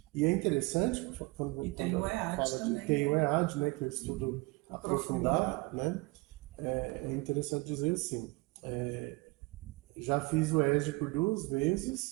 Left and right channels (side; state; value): left; quieter; 25.1 dB